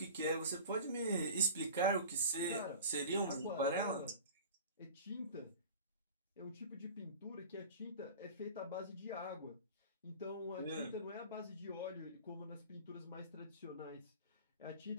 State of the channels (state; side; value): inverted; both; correlation -0.38